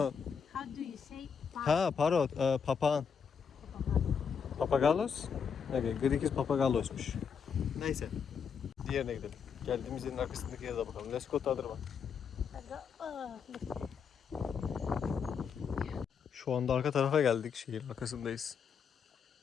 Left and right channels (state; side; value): quieter; right; 6.6 dB